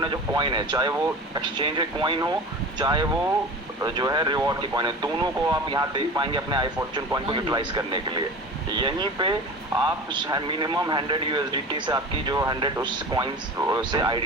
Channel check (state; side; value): normal; both; correlation 0.34